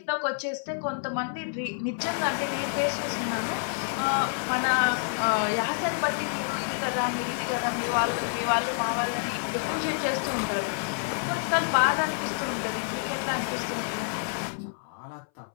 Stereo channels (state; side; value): silent; right; 59 dB below the other